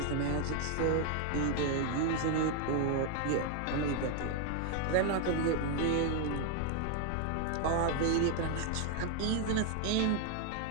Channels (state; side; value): different; both; correlation 0.01